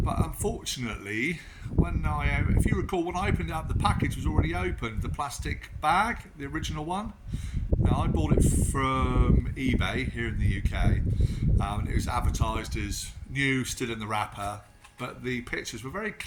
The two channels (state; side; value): identical; both; correlation 1.00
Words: unfortunately, if you recall, when I opened it up, the package was already opened, the plastic bag, the original one. Now, I bought it from eBay here in the UK, and it was advertised as new, still in the wrapper, but the pictures were very